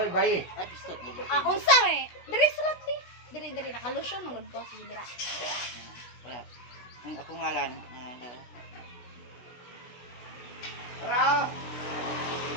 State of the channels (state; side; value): late; right; 16 ms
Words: bayi. Ay, pistot mo. Ah, unsa eh? Diri sulat di. Diri nakalusyon magud ko sige dira. Wala. Ang ako ngalan. Para!